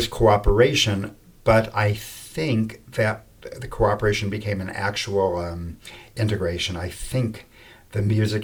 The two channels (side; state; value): both; identical; correlation 1.00